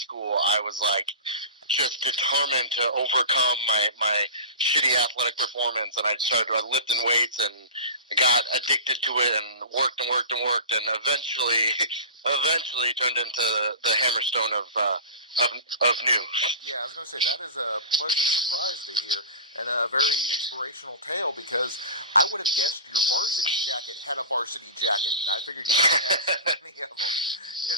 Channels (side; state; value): both; inverted; correlation -0.33